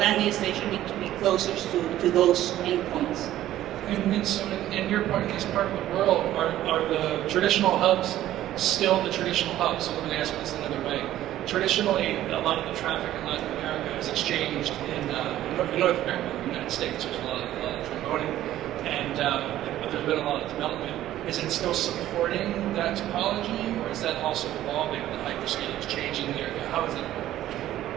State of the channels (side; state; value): left; quieter; 13.4 dB